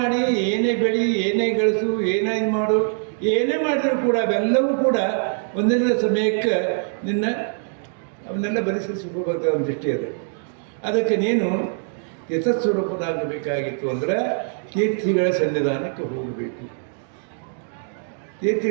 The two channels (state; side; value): silent; left; 63 dB below the other